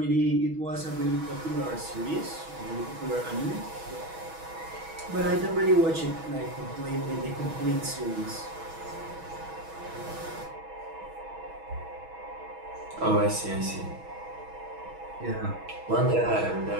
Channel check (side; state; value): left; late; 6.2 ms